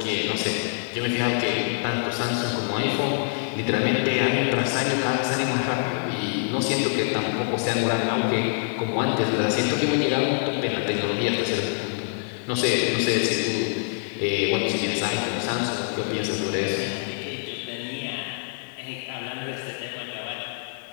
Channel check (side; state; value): right; silent; digital silence